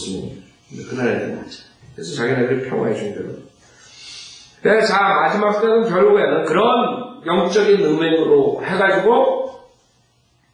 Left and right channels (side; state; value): both; identical; correlation 1.00